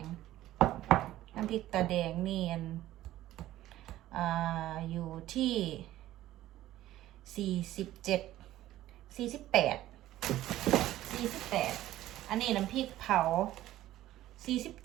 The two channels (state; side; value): quieter; left; 14.5 dB